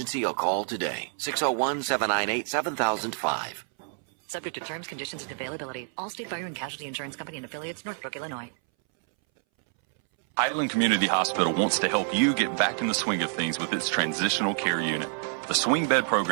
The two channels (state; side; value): silent; left; 60 dB below the other